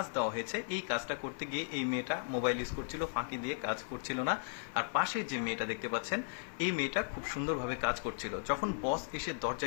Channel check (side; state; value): right; silent; 54 dB below the other